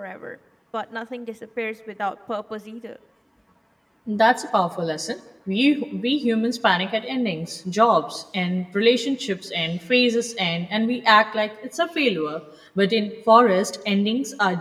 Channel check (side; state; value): both; identical; correlation 1.00